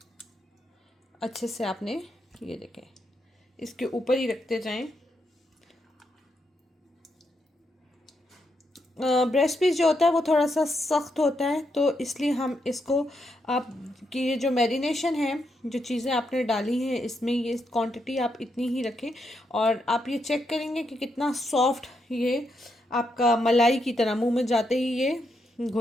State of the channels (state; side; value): normal; both; correlation 0.81